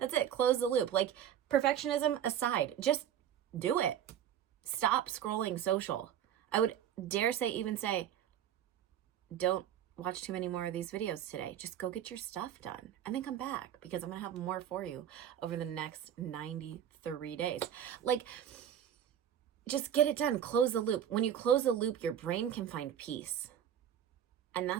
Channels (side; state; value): left; quieter; 9.9 dB